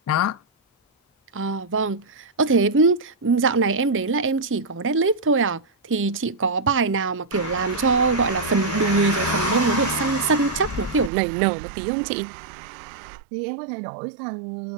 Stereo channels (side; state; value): left; drops out; at 11.1 s